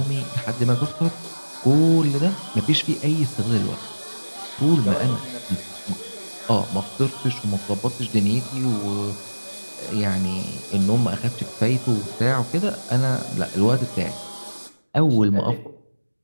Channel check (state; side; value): inverted; both; correlation -1.00